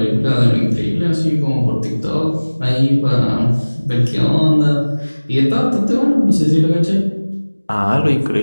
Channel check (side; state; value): both; inverted; correlation -1.00